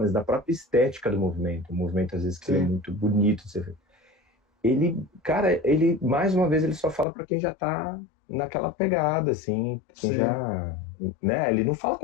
da própria estética do movimento. O movimento, às vezes, que ele é Sim, muito bonito de ser feito. Ele, cara, ele, mais uma vez, ele só fala para quem já tá naquela pegada, assim, quem sim. já, né? Ele não fala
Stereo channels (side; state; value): right; drops out; at 7.1 s